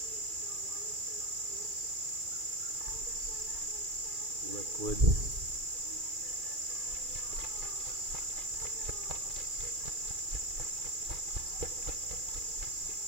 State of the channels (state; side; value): late; left; 2.4 ms